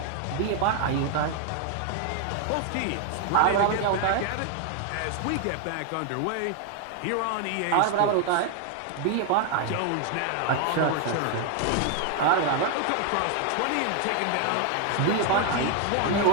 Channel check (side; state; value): both; different; correlation 0.00